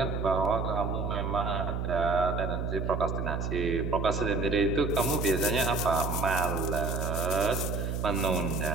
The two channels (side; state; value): right; noise; hum, 2 dB below the sound